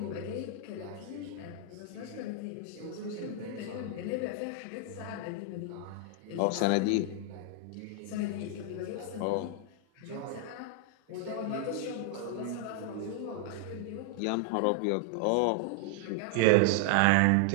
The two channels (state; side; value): different; both; correlation 0.00